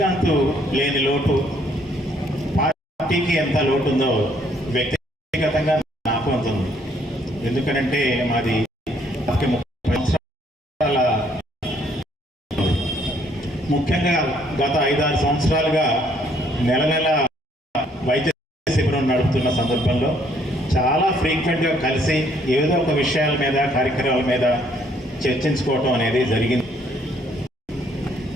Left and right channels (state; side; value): normal; both; correlation 0.66